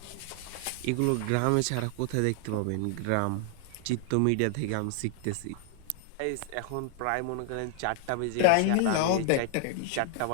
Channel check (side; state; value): both; different; correlation 0.00